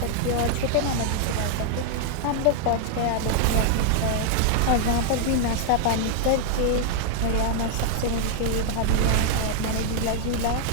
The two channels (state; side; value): different; both; correlation 0.00